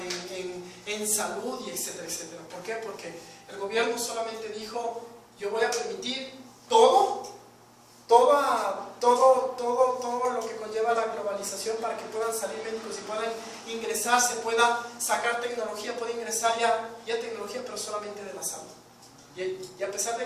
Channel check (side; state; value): both; identical; correlation 1.00